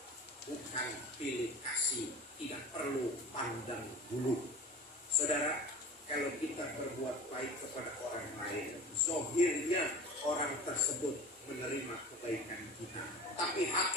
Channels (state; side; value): normal; both; correlation 0.38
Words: bukan pilih kasih, tidak perlu pandang bulu. Saudara, kalau kita berbuat baik kepada orang lain, zahirnya orang tersebut menerima kebaikan kita, tapi